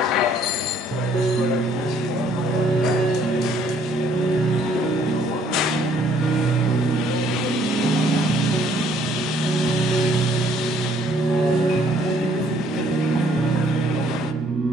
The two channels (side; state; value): both; normal; correlation 0.63